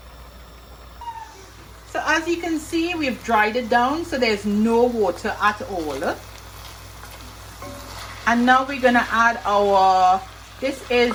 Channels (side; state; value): both; identical; correlation 1.00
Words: So as you can see, we've dried it down, so there's no water at all. And now we're gonna add this